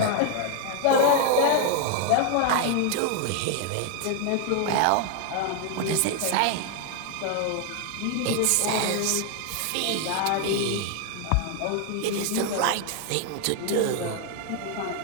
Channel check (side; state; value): both; different; correlation 0.00